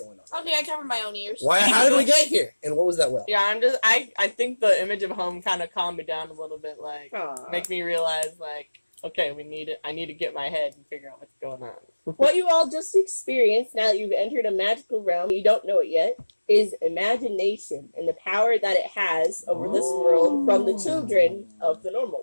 on. Okay, I covered my own ears. How did we get here and what was that well? Yeah, I think the image of home kind of calmed me down a little bit, like make me realize like, okay, I need to get my head and figure out what's going on. What you all just experienced, now that you've entered a magical realm, you don't know it yet, is imagination and the power that it has over this world from the children of the normal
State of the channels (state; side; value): inverted; both; correlation -1.00